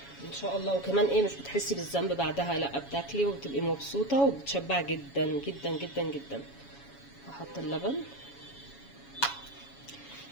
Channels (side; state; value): right; late; 7.2 ms